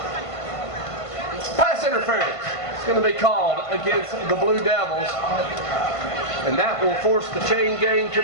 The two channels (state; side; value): late; right; 1.5 ms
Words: Pass interference. It's going to be called against the Blue Devils. And that will force the chain gang to